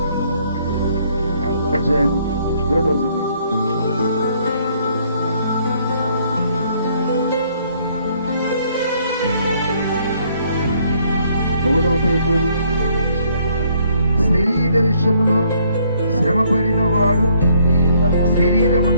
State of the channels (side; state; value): both; inverted; correlation -0.66